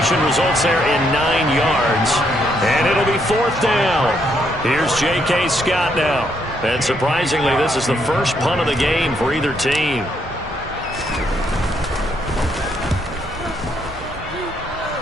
results there in 9 yards, and it'll be 4th down. Here's J.K. Scott now. And surprisingly, this is the first punt of the game for either team.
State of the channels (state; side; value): normal; both; correlation 0.74